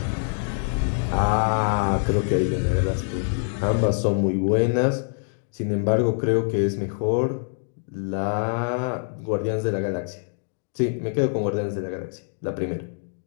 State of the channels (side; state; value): right; silent; digital silence